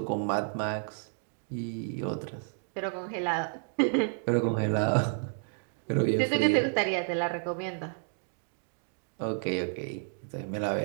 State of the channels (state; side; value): silent; left; 57 dB below the other